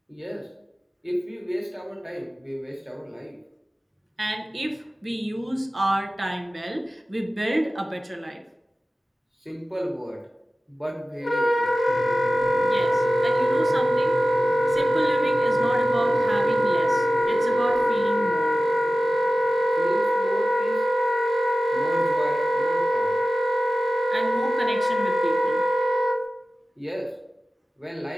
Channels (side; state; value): both; normal; correlation 0.95